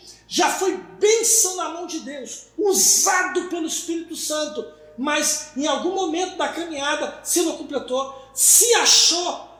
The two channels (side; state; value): both; identical; correlation 1.00